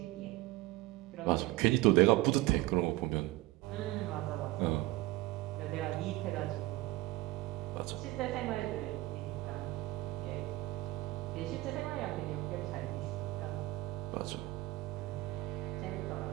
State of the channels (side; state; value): left; quieter; 18.8 dB